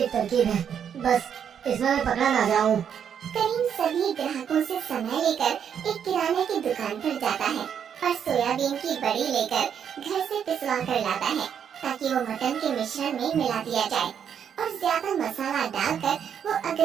तरकीब है, बस इसमें मैं पकड़ा ना जाऊं। करीम सभी ग्राहकों से समय लेकर एक किराने की दुकान पर जाता है और सोयाबीन की बड़ी लेकर घर से पिसवा कर लाता है ताकि वो मटन के मिश्रण में मिला दिया जाए और ज्यादा मसाला डालकर वो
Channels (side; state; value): left; quieter; 8.2 dB